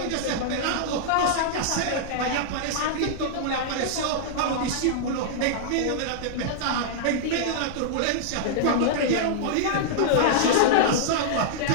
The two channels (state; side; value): different; both; correlation -0.01